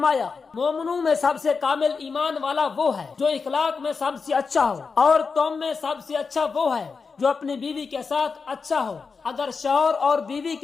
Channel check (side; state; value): right; quieter; 5.0 dB